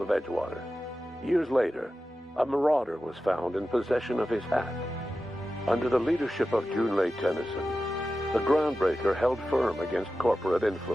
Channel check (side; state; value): both; normal; correlation 0.93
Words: Edgewater. Years later, a marauder was found in possession of his hat. Under the leadership of Junlei Tennyson, the Groundbreaker held firm against corporate